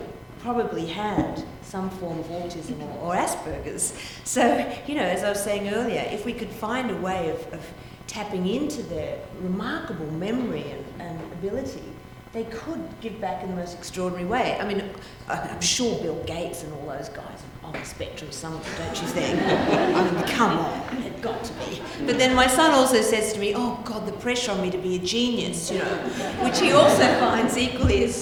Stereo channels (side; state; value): both; identical; correlation 1.00